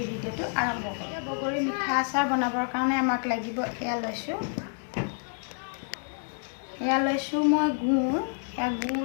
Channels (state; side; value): silent; right; 59 dB below the other